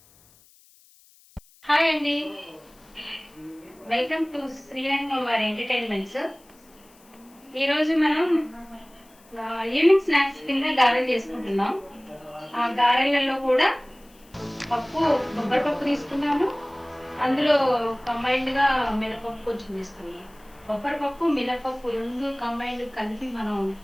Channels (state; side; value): noise; left; hiss, 28 dB below the sound